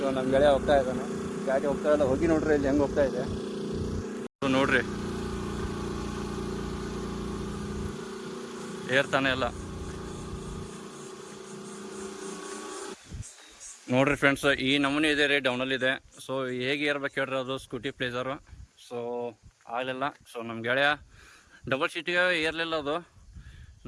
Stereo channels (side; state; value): both; identical; correlation 1.00